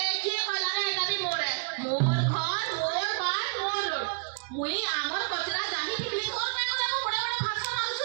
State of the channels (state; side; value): quieter; left; 39.5 dB